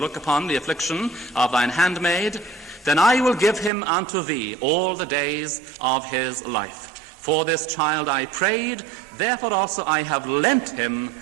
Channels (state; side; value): drops out; left; at 3.7 s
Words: upon the affliction of thine handmaid, then I will give him unto thee all the days of his life. For this child I prayed, therefore also I have lent him